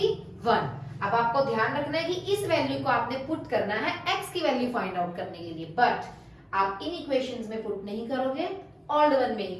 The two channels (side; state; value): both; identical; correlation 1.00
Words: 1। अब आपको ध्यान रखना है कि इस वैल्यू को आपने पुट करना है x की वैल्यू फाइंड आउट करने के लिए, बट आप इन इक्वेशंस में पुट नहीं करोगे, ऑल्ड वन में ही